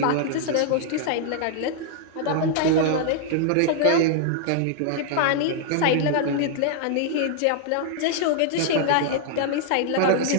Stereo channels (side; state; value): both; different; correlation 0.00